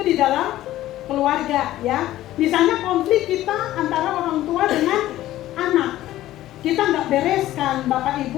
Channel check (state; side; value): quieter; right; 14.5 dB